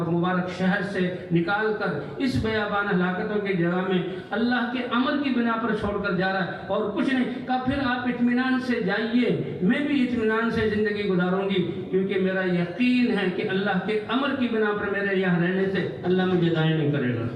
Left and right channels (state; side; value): identical; both; correlation 1.00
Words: مبارک شہر سے نکال کر اس بیابان ہلاکتوں کی جگہ میں اللہ کے امر کی بنا پر چھوڑ کر جا رہا ہے اور کچھ نہیں کہا، پھر آپ اطمینان سے جائیے، میں بھی اطمینان سے زندگی گزاروں گی، کیونکہ میرا یقین ہے کہ اللہ کے امر کی بنا پر میرے یہاں رہنے سے اللہ مجھے ضائع نہیں کرے گا۔